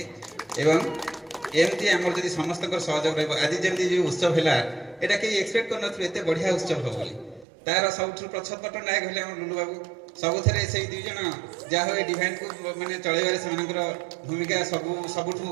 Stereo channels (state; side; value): drops out; left; at 7.5 s